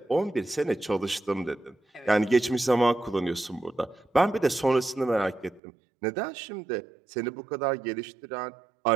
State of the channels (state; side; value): drops out; left; at 5.6 s